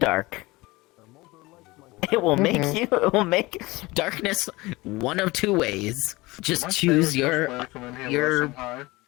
It will make darkness one of two ways. Just choose your poison. Your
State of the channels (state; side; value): quieter; right; 21.6 dB